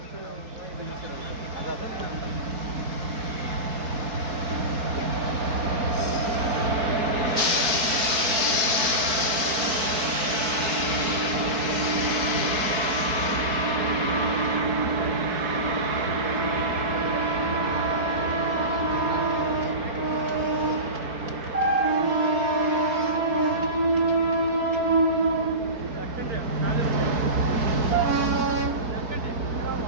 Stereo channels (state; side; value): late; left; 4.6 ms